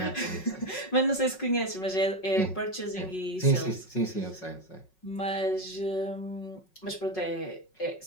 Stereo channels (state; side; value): late; right; 5.4 ms